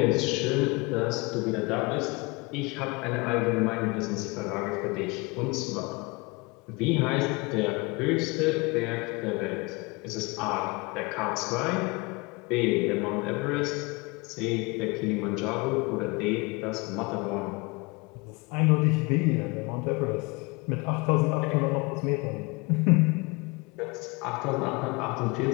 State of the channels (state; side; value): quieter; right; 27.0 dB